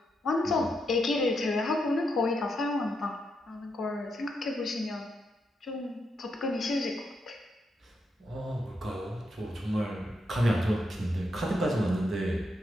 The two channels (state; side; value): normal; both; correlation 0.82